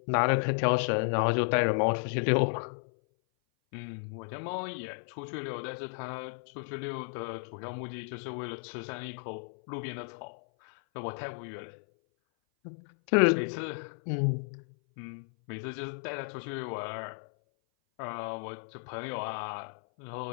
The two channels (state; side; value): silent; right; 56 dB below the other